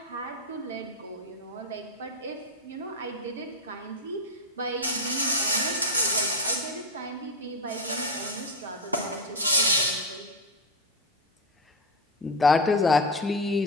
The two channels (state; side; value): normal; both; correlation 0.09